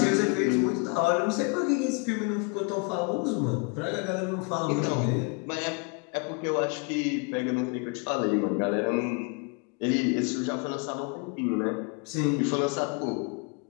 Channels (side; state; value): right; quieter; 33.1 dB